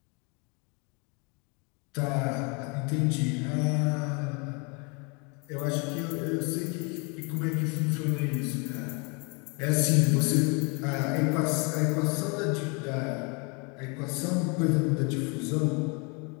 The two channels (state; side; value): quieter; right; 32.3 dB